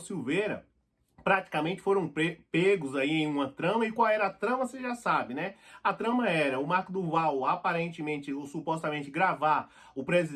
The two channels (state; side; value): identical; both; correlation 1.00